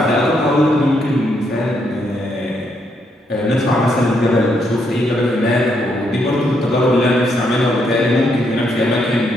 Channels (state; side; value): normal; both; correlation 0.76